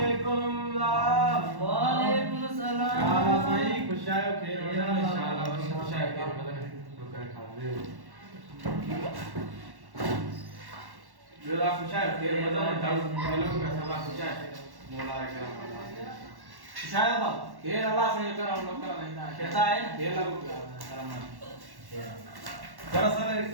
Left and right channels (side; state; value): left; late; 1.1 ms